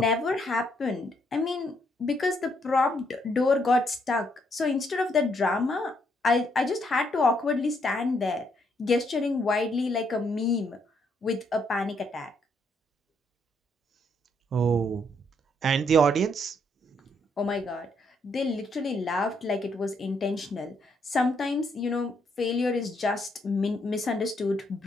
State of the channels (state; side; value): normal; both; correlation 0.73